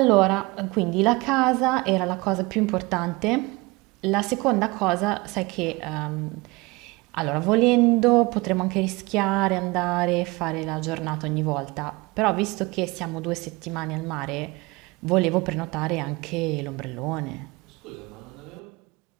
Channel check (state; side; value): quieter; left; 24.1 dB